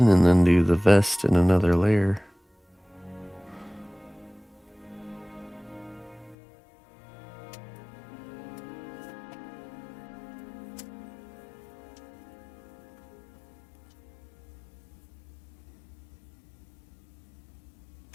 and then do the vest in another layer.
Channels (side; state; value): right; drops out; at 6.4 s